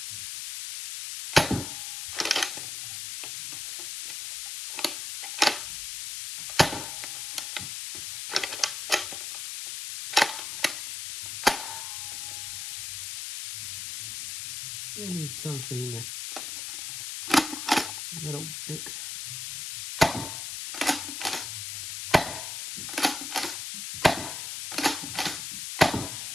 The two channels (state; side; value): noise; left; hiss, 6 dB below the sound